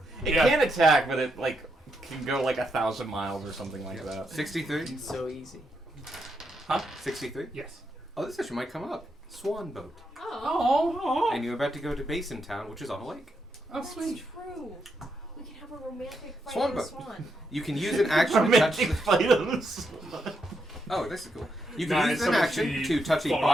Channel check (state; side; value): normal; both; correlation 0.81